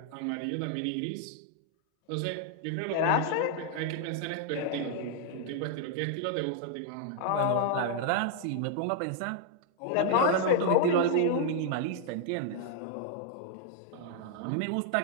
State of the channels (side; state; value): both; different; correlation 0.00